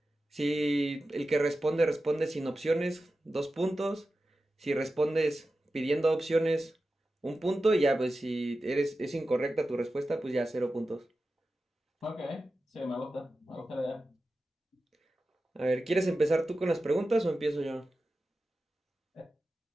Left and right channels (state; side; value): normal; both; correlation 0.93